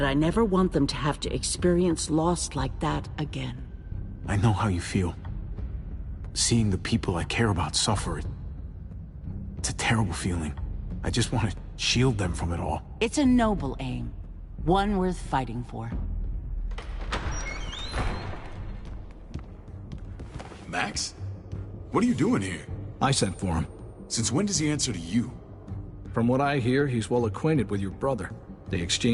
I never want them to have to experience loss like that again. I know how you feel. Seeing the people I care about suffer, It's a terrible feeling. I just want to shield them from it all. It's a noble aim. One worth fighting for. Max? What are you doing here? I sent for him. Since when does he answer to you? From what I hear, he's well acquainted with your brother. They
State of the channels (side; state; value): both; identical; correlation 1.00